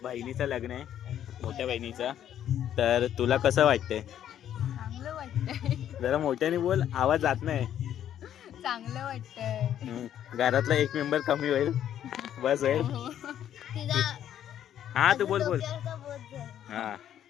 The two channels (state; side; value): quieter; right; 10.5 dB